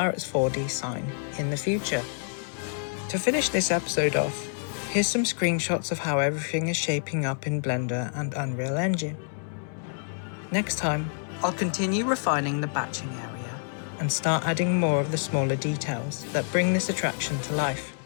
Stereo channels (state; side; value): silent; right; digital silence